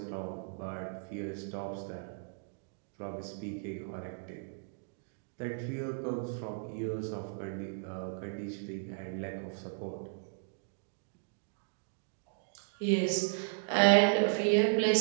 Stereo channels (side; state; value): left; silent; digital silence